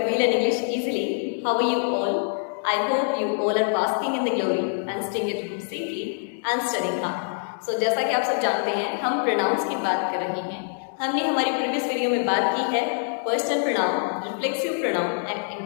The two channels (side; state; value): right; silent; digital silence